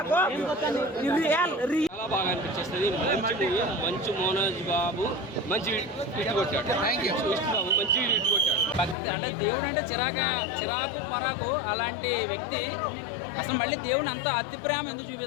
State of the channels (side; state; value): right; drops out; at 9.0 s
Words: చాలా బాగా అనిపించేస్తుంది. మంచి మోహన్ బాబు మంచి హిట్ కొట్టాడు. విష్ణు బాబు మంచి హిట్ కొట్టాడు. భక్తి అంటే దేవుడు అంటే చిరాకు పరాకు అలాంటి వ్యక్తి అసలు మళ్ళీ దేవుని అంత అతి ప్రేమ ఎందుకు